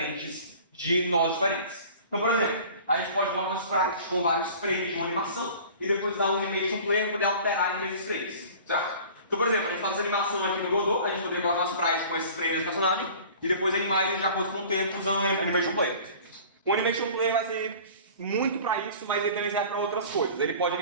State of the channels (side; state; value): both; inverted; correlation -0.44